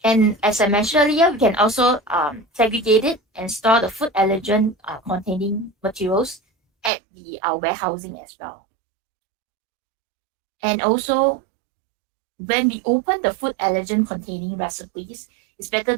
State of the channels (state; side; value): drops out; left; at 6.9 s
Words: And as I mentioned earlier, we can also segregate it and store the food allergen containing materials at the warehousing as well. And also, when we open the food allergen containing recipes, it's better